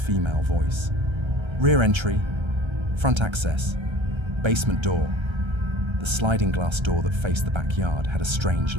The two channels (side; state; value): left; late; 1.3 ms